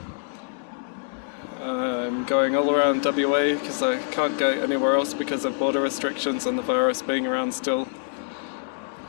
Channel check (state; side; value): silent; right; digital silence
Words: I'm going all around WA because I can't go anywhere else because of border restrictions and the virus being around still.